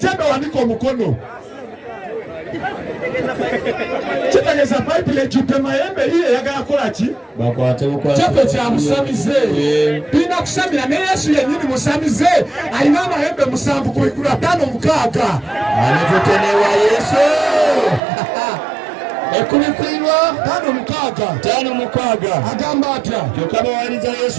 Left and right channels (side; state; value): left; drops out; at 18.0 s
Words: wanika omukono. Kitegeeza Bayibuli ejjudde mayembe ye eyagala kukola ki? Kyaffe kya musamize. Tulina kusamira ne Yesu yennyini musamize. Alina amayembe 7 ku 5 6. Anatutenewa Yesu. 5 agamba atya? Kyokka bawaliza